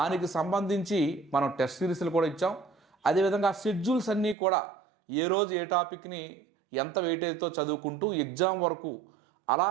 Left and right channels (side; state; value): left; drops out; at 4.4 s